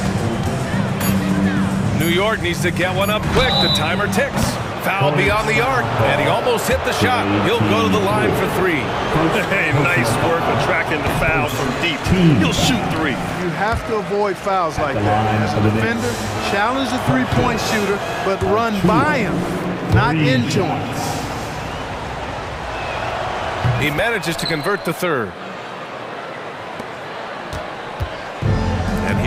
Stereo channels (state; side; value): identical; both; correlation 1.00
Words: New York needs to get one up quick. The timer ticks. Foul beyond the arc, and he almost hit the shot. He'll go to the line for 3. Hey, nice work attracting the foul from deep. He'll shoot 3. You have to avoid fouls like that. As a defender, challenge the three-point shooter, but run by him, not into him. He manages to convert the 3rd. And